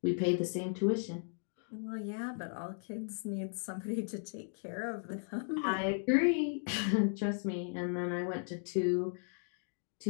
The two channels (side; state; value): right; silent; 54 dB below the other